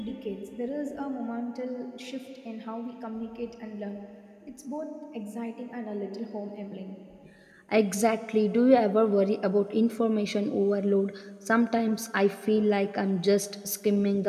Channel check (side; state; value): both; identical; correlation 1.00